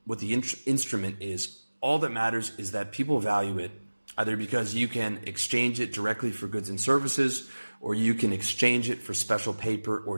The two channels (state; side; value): inverted; both; correlation -1.00